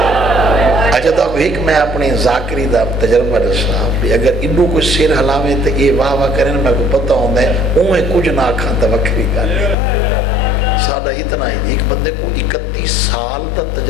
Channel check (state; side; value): drops out; right; at 9.8 s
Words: چاہتا ہوں ایک میں اپنی ذاکری دا تجربہ رسا بھی اگر انہوں کوئی سیر حلاوے تو یہ واہ واہ کریں میں کو پتہ ہوندہ ہے اوہیں کچھ نہ کھاں تو وکری گا سادہ اتنا ہی ایک بندے کو 31 سال تا